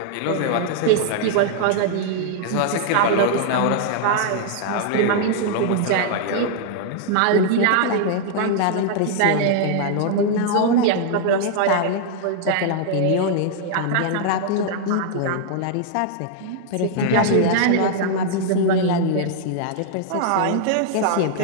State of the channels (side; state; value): both; different; correlation -0.01